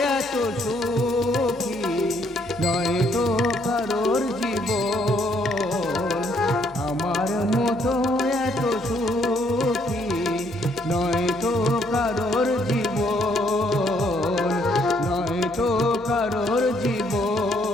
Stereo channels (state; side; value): normal; both; correlation 0.69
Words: এত সুখী নয় তো কারোর জীবন, আমার মতো এত সুখী নয় তো কারোর জীবন, নয় তো কারোর